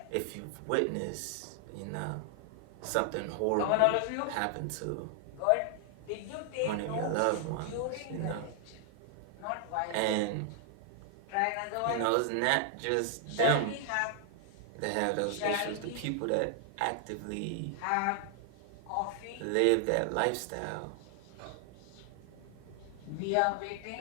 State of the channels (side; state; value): both; different; correlation 0.00